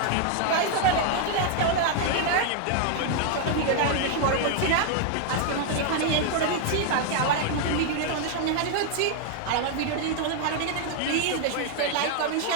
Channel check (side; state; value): both; different; correlation 0.00